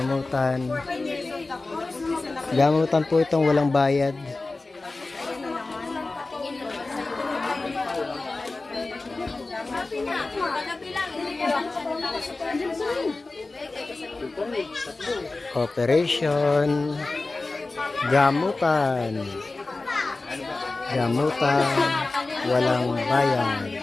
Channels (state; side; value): quieter; right; 3.4 dB